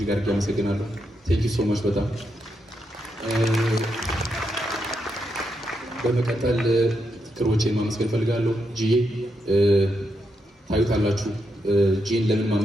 አድርጌ አመሰግናለሁ። ቴንክ ዩ ሶ ማች። በጣም በመቀጠል ክሮቼን ማመስገን ፈልጋለሁ። ጂዬ ታዩታላችሁ። ጂን ለምን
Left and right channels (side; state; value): both; normal; correlation 0.82